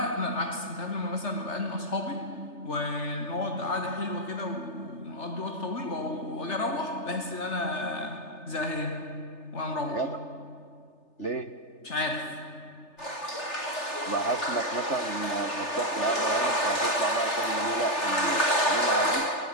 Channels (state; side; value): late; right; 3.4 ms